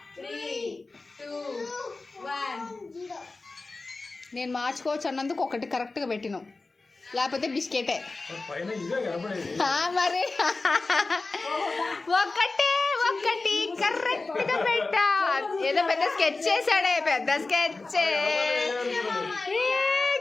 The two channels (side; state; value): right; quieter; 3.5 dB